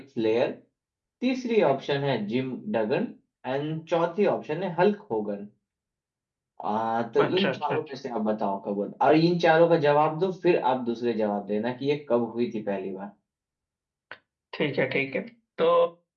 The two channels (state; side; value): identical; both; correlation 1.00